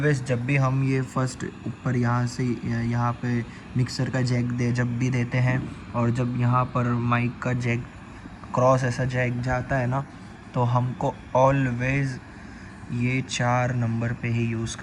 जब भी हम ये फर्स्ट ऊपर यहाँ से यहाँ पे मिक्सर का जैक जब भी देते हैं, और जब यहाँ पर माइक का जैक क्रॉस ऐसा जैक जाता है ना, तो हमको ऑलवेज़ ये 4 नंबर पे ही यूज़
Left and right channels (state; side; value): identical; both; correlation 1.00